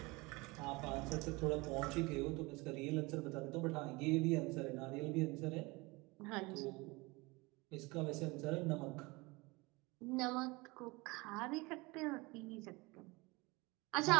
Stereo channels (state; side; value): quieter; left; 24.4 dB